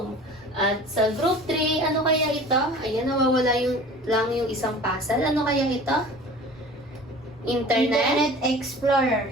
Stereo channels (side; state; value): both; normal; correlation 0.42